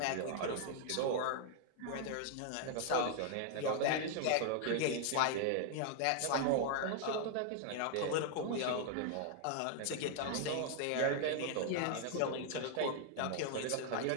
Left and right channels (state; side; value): different; both; correlation 0.00